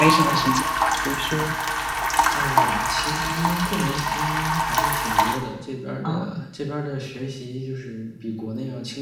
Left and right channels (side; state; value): both; identical; correlation 1.00